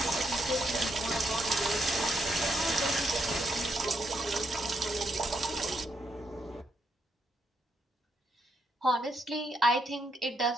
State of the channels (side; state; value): both; normal; correlation 0.78